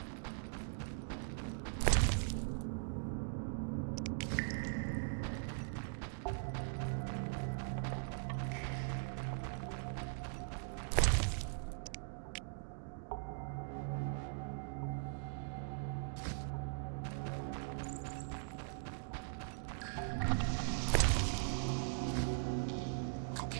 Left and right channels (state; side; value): silent; left; digital silence